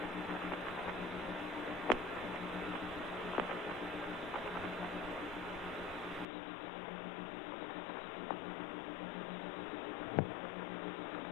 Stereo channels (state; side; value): drops out; right; at 6.2 s